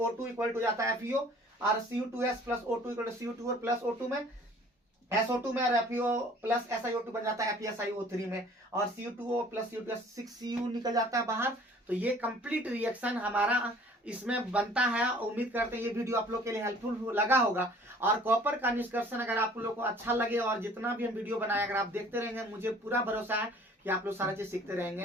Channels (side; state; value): both; normal; correlation 0.52